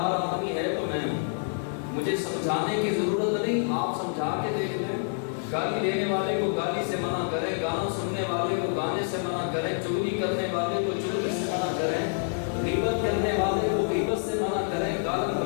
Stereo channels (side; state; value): right; silent; digital silence